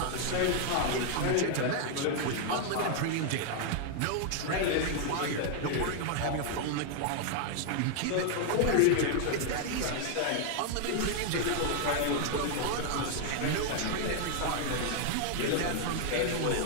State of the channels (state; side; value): different; both; correlation 0.00